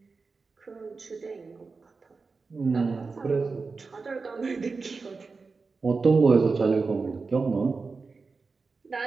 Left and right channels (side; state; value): left; quieter; 4.3 dB